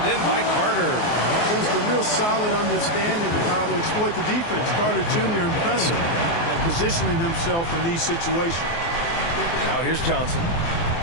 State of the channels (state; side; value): late; right; 24 ms